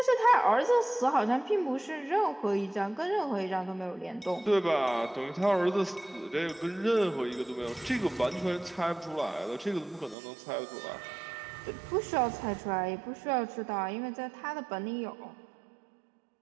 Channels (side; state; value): left; drops out; at 10.2 s